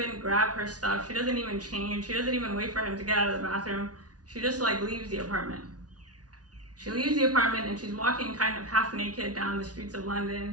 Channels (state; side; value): late; left; 0.68 ms